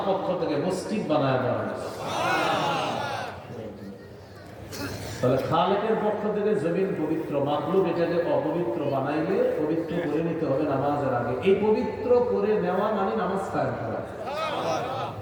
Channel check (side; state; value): both; identical; correlation 1.00